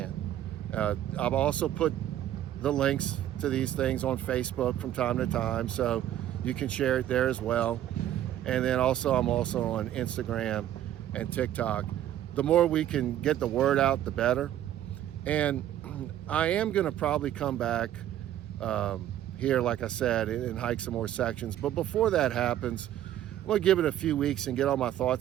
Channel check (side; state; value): left; quieter; 12.0 dB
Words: I've also put the links to these things on Facebook from time to time, so you can share it there as well. And then also, I'm also on Instagram and TikTok. The more we can get the word out, the better. And I am gonna probably come back here, like I said, and hike some more sections. But before that happens, I'm gonna give it a few weeks and get all my